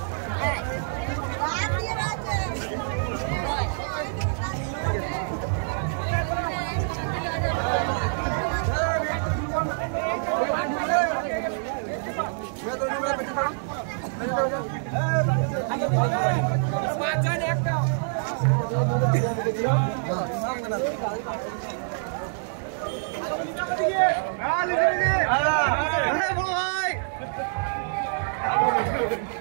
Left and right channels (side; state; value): left; silent; digital silence